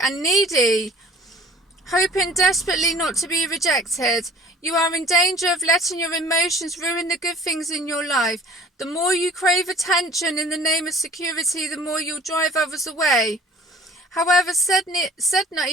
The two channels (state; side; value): normal; both; correlation 0.48